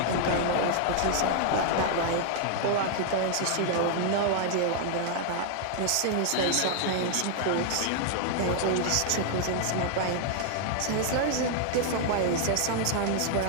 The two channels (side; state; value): both; different; correlation 0.00